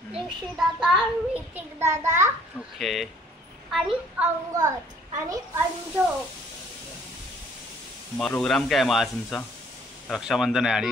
ऋषी दादा, ऋतिक दादा, ओके, आणि अंगद आणि अंजू. मग प्रोग्राम काय मग आज तुमचा? रक्षाबंधन आहे आणि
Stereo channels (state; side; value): normal; both; correlation 0.59